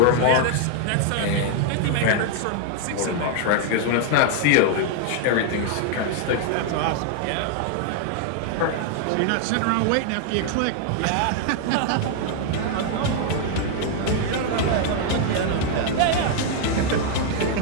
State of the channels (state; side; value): different; both; correlation 0.00